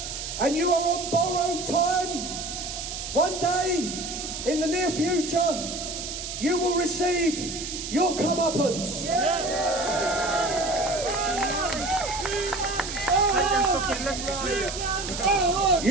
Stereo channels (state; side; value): noise; right; hiss, 7 dB below the sound